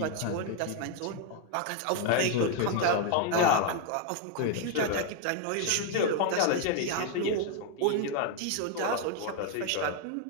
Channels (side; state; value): both; different; correlation 0.00